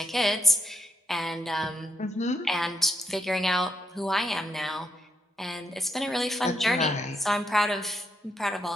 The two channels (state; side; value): normal; both; correlation 0.77